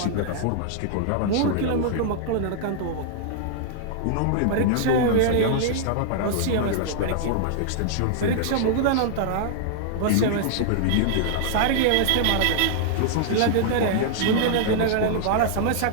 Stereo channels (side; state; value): both; different; correlation -0.01